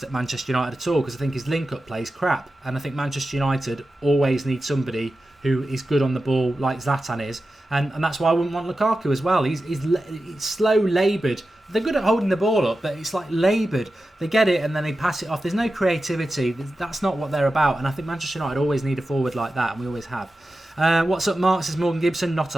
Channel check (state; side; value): normal; both; correlation 0.93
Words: at Manchester United at all, because I think his link-up play is crap, and I think Manchester United always need somebody who is good on the ball like Zlatan is, and that's why I wouldn't want Lukaku as well. He's slow, laboured. They're good at holding the ball up, but it's like laboured. They get it and then they pass it off. There's no creativity. That's not what they're about, and I think Manchester United always need a forward like that, and we always have. What's up, Mark, says Morgan Gibson. Not